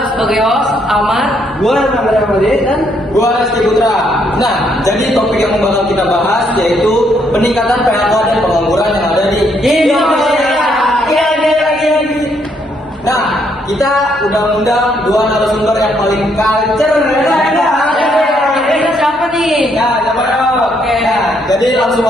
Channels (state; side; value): normal; both; correlation 0.72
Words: sebagai host Amar. Gua Nagara Made dan Gua Rizky Putra. Nah, jadi topik yang bakal kita bahas yaitu peningkatan PHK dan pengangguran yang ada di Indonesia. Nah, kita undang-undang dua narasumber yang paling culture. Kita siapa nih? Nah, siapa dong? Oke. Nah, jadi langsung